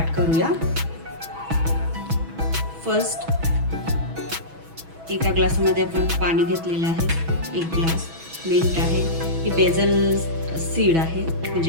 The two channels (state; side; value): late; left; 6.1 ms